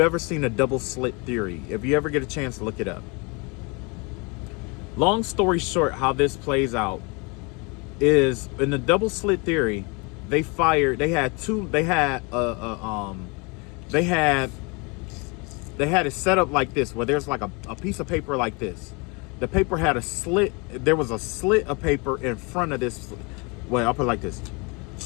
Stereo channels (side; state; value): right; quieter; 30.1 dB